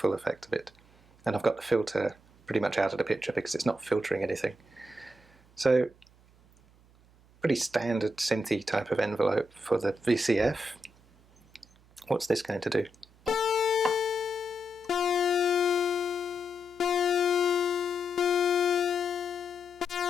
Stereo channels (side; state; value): right; noise; hum, 28 dB below the sound